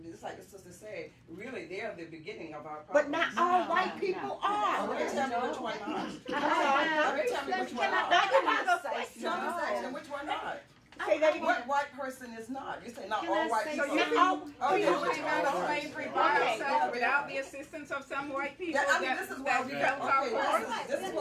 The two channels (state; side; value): identical; both; correlation 1.00